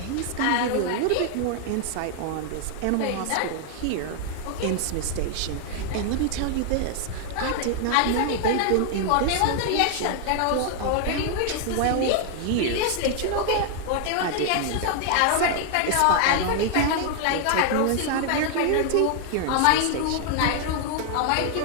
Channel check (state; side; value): different; both; correlation 0.00